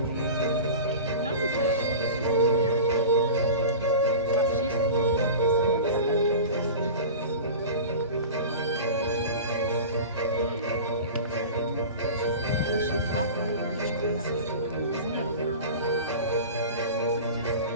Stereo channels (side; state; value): both; inverted; correlation -0.34